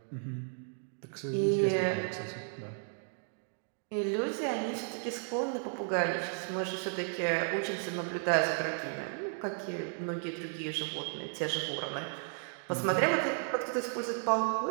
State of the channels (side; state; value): left; silent; 55 dB below the other